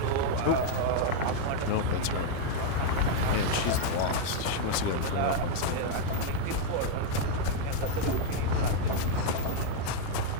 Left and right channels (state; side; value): different; both; correlation 0.00